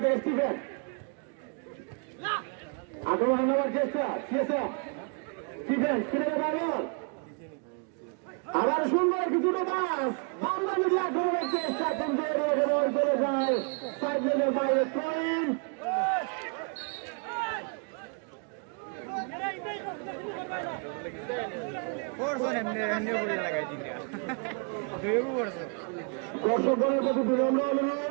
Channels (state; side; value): quieter; left; 38.3 dB